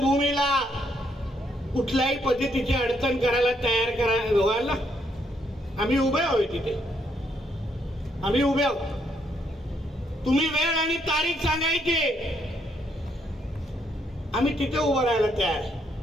कुठल्याही पद्धतीची अडचण करायला तयार व्हायला आम्ही उभे आहोत. तिथे आम्ही उभे आहोत. तुम्ही वेळ आणि तारीख सांगायची, आम्ही तिथे उभं राहायला तयार आहे.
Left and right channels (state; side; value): normal; both; correlation 0.74